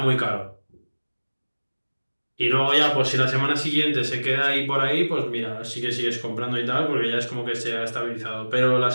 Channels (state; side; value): inverted; both; correlation -1.00